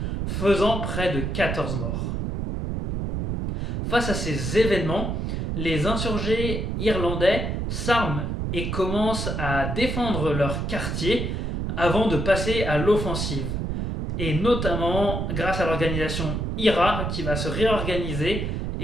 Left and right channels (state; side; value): noise; right; rumble, 2 dB below the sound